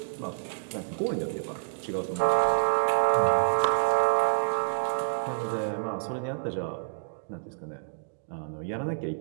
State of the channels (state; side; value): silent; left; digital silence